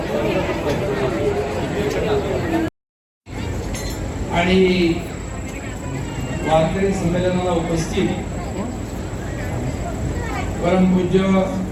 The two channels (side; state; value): both; identical; correlation 1.00